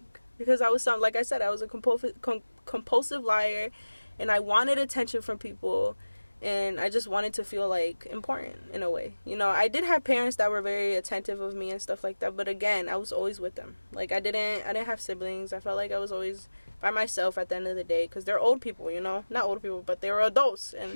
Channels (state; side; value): inverted; both; correlation -1.00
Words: because I was like I said, I was a compulsive liar, and I wanted attention from people, and I just wanted to feel like important in a way. You know, I did have parents that were very attentive of me and stuff like that, but again, I was always with them. Like I didn't have siblings. I felt like I was always by myself at the end of the day, because they're old people, you know, not old people, but they were adults,